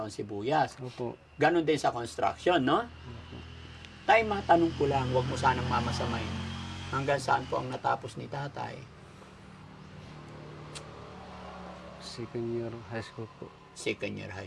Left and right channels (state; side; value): identical; both; correlation 1.00